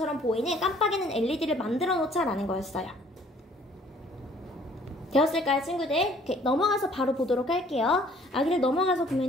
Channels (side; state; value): both; normal; correlation 0.58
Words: 보이는 깜빡이는 LED를 만들어 놓자라는 거였어요. 되었을까요, 친구들? 이렇게 넘어가서 바로 보도록 할게요. 아기를 넘어가서